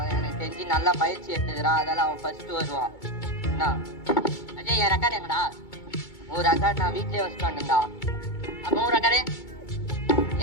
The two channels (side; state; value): right; late; 2.3 ms